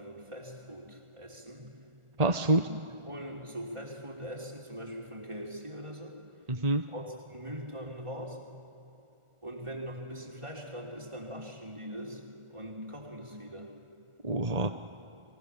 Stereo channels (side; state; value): left; late; 1.4 ms